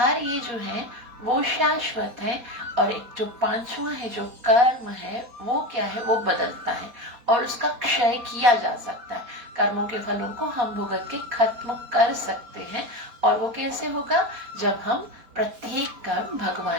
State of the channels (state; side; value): late; left; 4.2 ms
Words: ये जो है वो शाश्वत है। और एक जो 5वां है जो कर्म है वो क्या है, वो बदलता है और उसका क्षय किया जा सकता है। कर्मों के फलों को हम भुगत के खत्म कर सकते हैं। और वो कैसे होगा, जब हम प्रत्येक कर्म